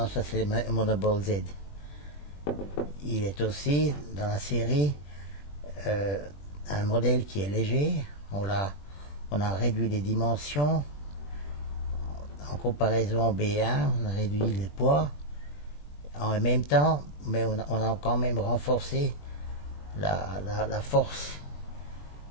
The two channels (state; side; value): late; right; 20 ms